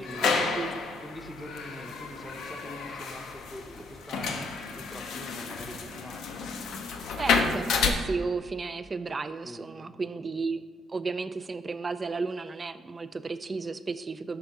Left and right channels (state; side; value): normal; both; correlation 0.71